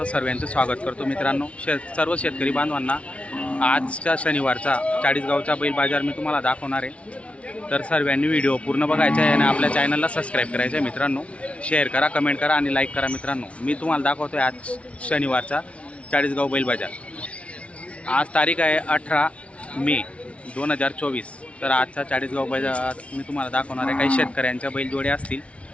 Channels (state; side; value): late; right; 0.062 ms